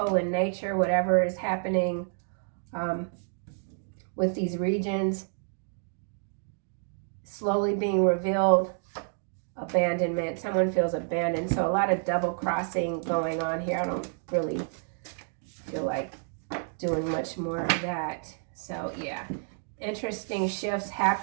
in nature, whatever is happening with these regions. Slowly being revealed. Abandonment. Someone feels abandoned. So a lot of double crossing going on here. I don't really feel like doing much more of that. So yeah, interesting shifts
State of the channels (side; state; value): left; silent; 58 dB below the other